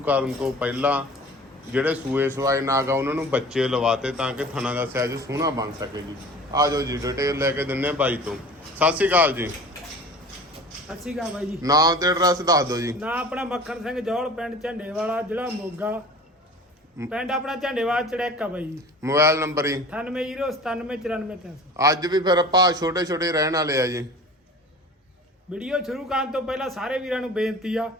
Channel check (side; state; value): both; normal; correlation 0.41